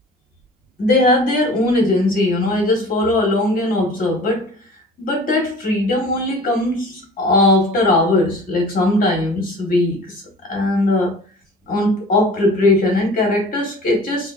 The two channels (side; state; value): both; normal; correlation 0.44